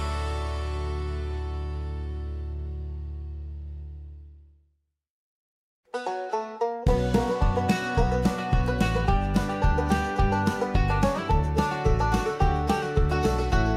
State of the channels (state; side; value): identical; both; correlation 1.00